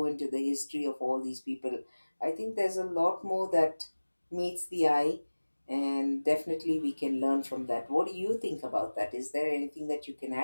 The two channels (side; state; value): both; inverted; correlation -1.00